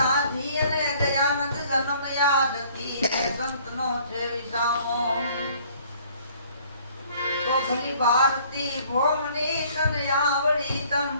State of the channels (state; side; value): inverted; both; correlation -0.57